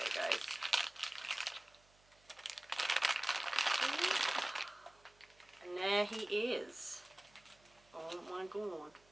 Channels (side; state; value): right; noise; hum, 30 dB below the sound